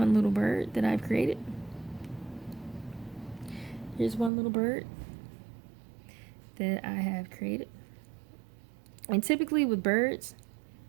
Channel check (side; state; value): left; drops out; at 4.3 s